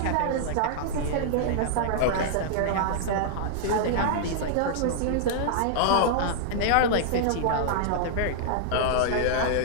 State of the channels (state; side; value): different; both; correlation -0.01